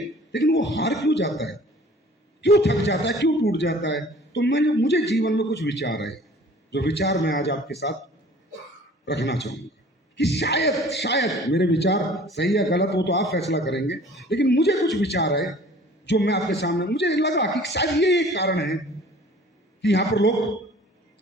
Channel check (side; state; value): both; normal; correlation 0.49